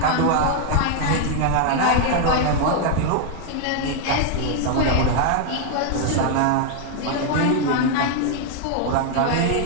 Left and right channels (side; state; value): both; different; correlation 0.00